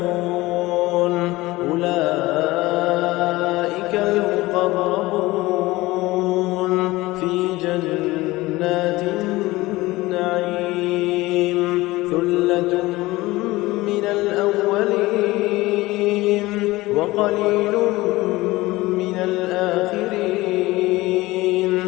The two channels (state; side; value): quieter; right; 19.5 dB